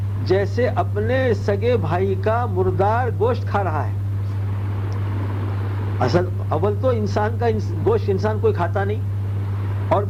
جیسے اپنے سگے بھائی کا مردار گوشت کھا رہا ہے۔ اول تو انسان کا گوشت انسان کوئی کھاتا نہیں، اور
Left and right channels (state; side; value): identical; both; correlation 1.00